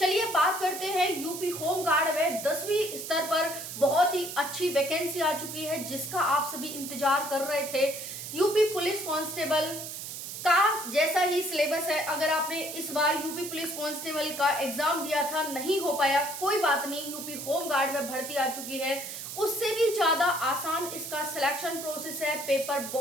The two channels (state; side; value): noise; right; hiss, 8 dB below the sound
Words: बात करते हैं यूपी होमगार्ड में 10वीं स्तर पर बहुत ही अच्छी वैकेंसी आ चुकी है, जिसका आप सभी इंतजार कर रहे थे। यूपी पुलिस कांस्टेबल का जैसा ही सिलेबस है। अगर आपने इस बार यूपी पुलिस कांस्टेबल का एग्जाम दिया था, नहीं हो पाया, कोई बात नहीं, यूपी होमगार्ड में भर्ती आ चुकी है। उससे भी ज्यादा आसान इसका सिलेक्शन प्रोसेस है। पेपर